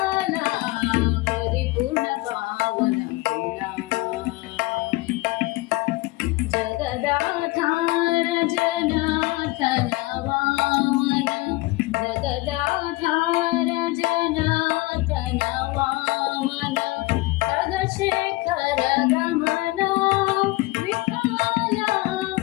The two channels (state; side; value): quieter; right; 21.4 dB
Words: परिपूर्ण पावन गुणा जगदाधार जनार्दन वामन जगदाधार जनार्दन वामन खगशेखर गमना विठ्ठला